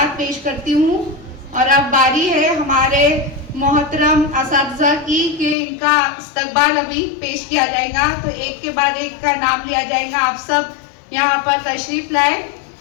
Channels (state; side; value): drops out; right; at 5.6 s